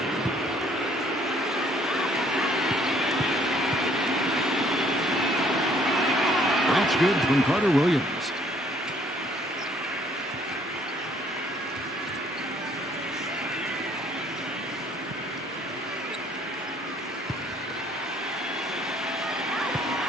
That's good from Carter Williams.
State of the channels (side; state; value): both; normal; correlation 0.62